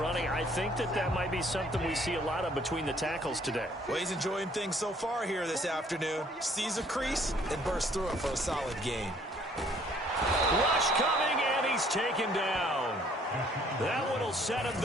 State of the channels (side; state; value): both; normal; correlation 0.61